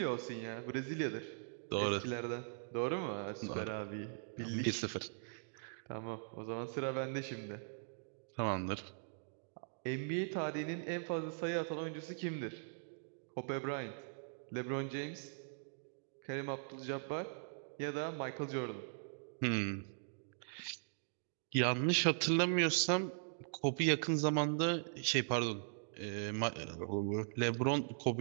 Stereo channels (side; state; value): left; silent; digital silence